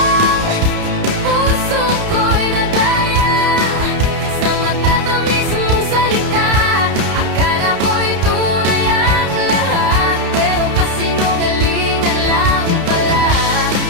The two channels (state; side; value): late; left; 31 ms